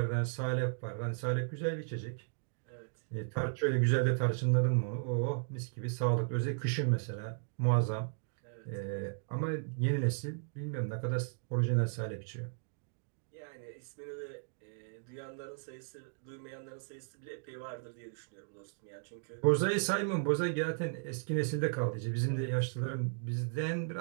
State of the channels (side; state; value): left; silent; digital silence